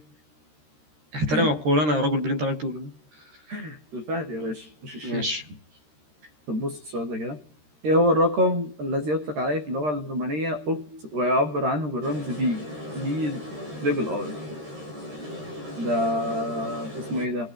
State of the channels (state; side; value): late; left; 13 ms